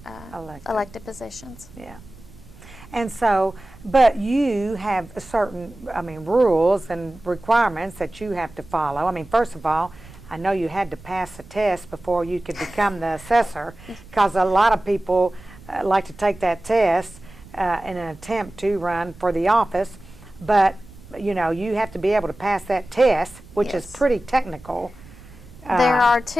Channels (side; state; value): right; noise; rumble, 20 dB below the sound